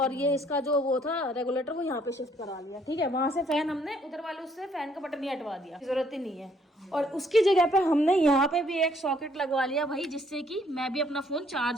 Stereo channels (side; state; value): both; normal; correlation 0.66